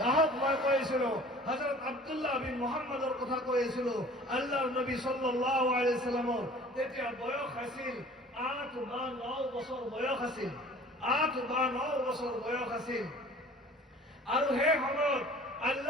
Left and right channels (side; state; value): both; normal; correlation 0.47